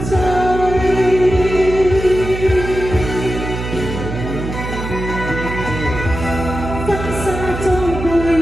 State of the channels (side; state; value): right; noise; hum, 6 dB below the sound